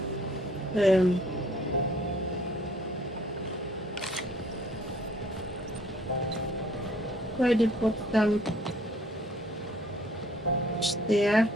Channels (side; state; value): both; normal; correlation 0.59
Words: why they put some stair